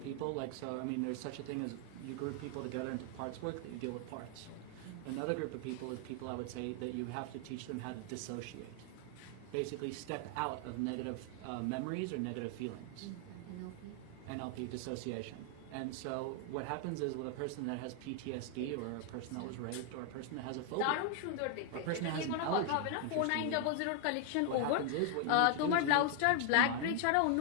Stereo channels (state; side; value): different; both; correlation 0.00